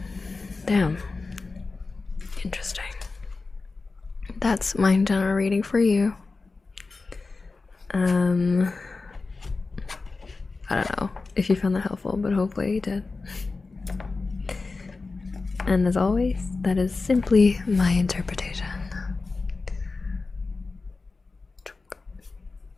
damn, interesting. That's my general reading for you. I don't know if you found that helpful, but hopefully you did. And as always, that is simply my interpretation.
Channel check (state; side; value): quieter; right; 3.9 dB